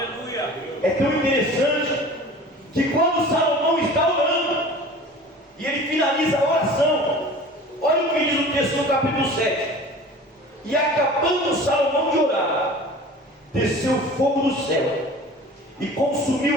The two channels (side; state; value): both; normal; correlation 0.41